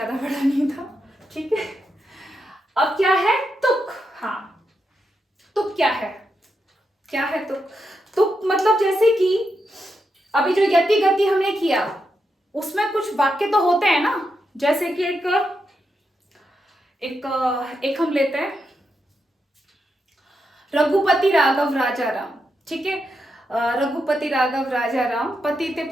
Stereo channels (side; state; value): both; normal; correlation 0.84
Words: बड़ा नहीं था। ठीक है, अब क्या है तुक। हाँ, तुक क्या है, क्या है तुक। तुक मतलब जैसे कि अभी जो यति गति हमने किया उसमें कुछ वाक्य तो होते हैं ना, जैसे कि एक हम लेते हैं रघुपति राघव राजा राम। ठीक है, रघुपति राघव राजा राम, पतित